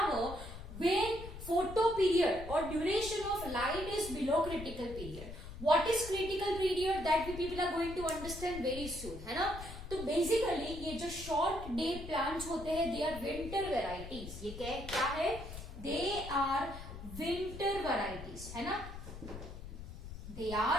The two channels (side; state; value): left; noise; rumble, 11 dB below the sound